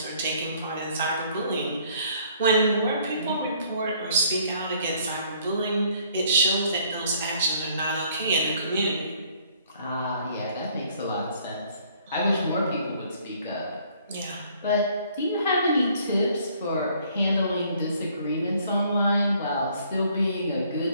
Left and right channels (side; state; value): both; inverted; correlation -0.62